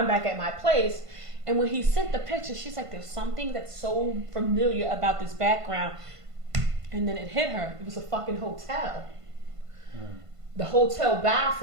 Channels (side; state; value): left; late; 1.5 ms